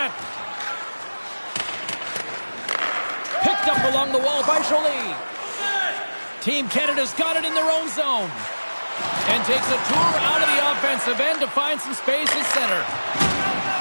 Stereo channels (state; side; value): inverted; both; correlation -1.00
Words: Picked up along the wall by Jolie. Team Canada's got it in their own zone. And takes a tour out of the offensive end to find some space at center.